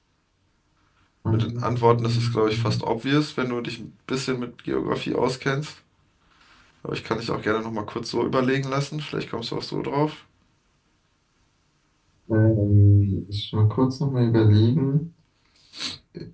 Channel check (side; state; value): both; identical; correlation 1.00